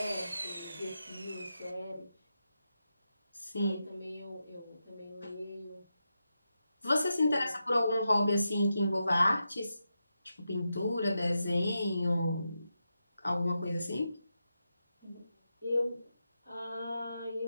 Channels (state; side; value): inverted; both; correlation -0.88